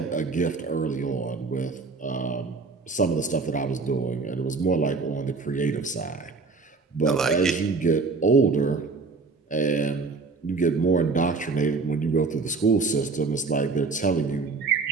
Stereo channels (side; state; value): left; quieter; 4.2 dB